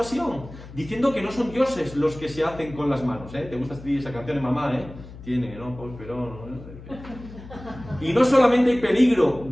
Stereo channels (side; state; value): left; noise; hum, 16 dB below the sound